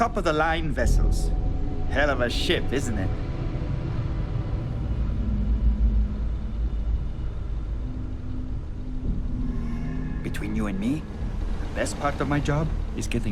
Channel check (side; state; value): both; identical; correlation 1.00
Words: vessels. Hell of a ship, isn't it? Between you and me, the best part of my job is